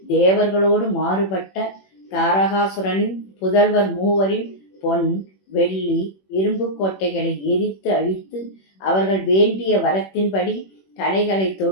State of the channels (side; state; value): right; late; 21 ms